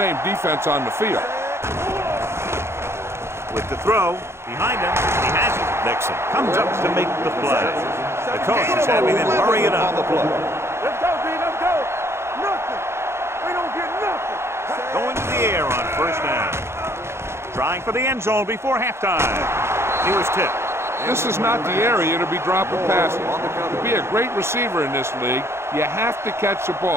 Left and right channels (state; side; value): late; left; 0.13 ms